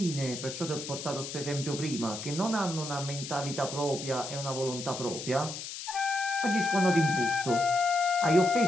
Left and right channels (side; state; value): left; noise; hiss, 8 dB below the sound